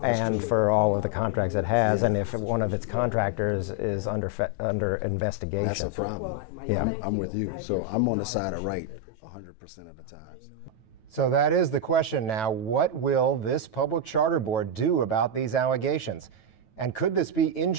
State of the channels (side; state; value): right; late; 9.2 ms